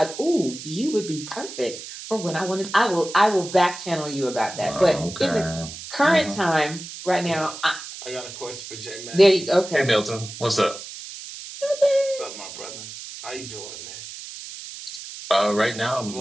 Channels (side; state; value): right; noise; hiss, 12 dB below the sound